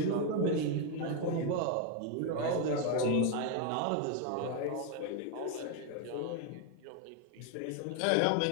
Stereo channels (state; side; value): different; both; correlation 0.01